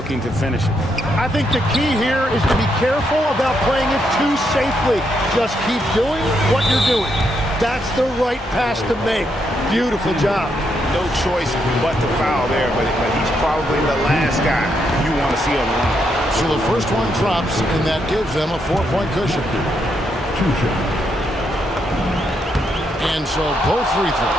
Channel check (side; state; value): both; normal; correlation 0.78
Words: to finish it. I think the key here is to be careful about playing it too safely. Just keep doing what you're doing. That's the right pass to make. Beautiful job. No choice but to foul there, but he's probably the last guy you want to see on the line. So the first one drops, and that gives them a 4-point cushion. 2 shots. And so both free